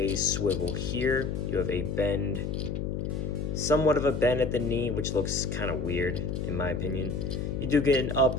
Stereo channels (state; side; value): noise; left; hum, 2 dB below the sound